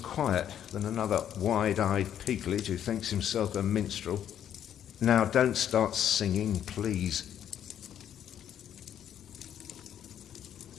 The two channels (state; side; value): quieter; right; 10.0 dB